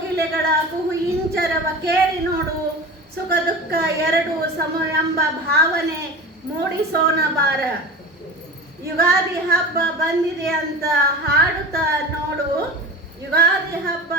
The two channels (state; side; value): normal; both; correlation 0.32